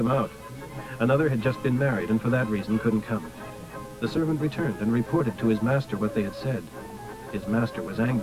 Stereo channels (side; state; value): both; identical; correlation 1.00